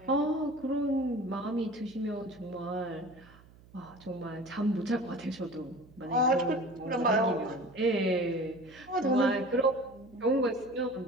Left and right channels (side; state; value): right; noise; hum, 24 dB below the sound